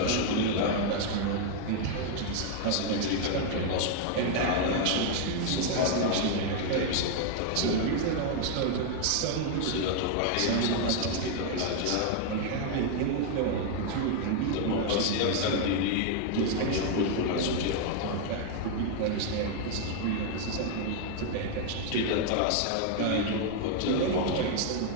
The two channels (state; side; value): different; both; correlation 0.00